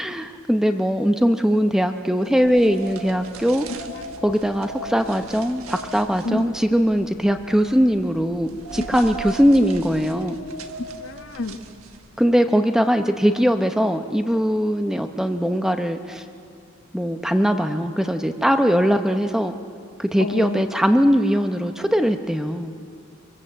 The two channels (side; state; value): both; normal; correlation 0.92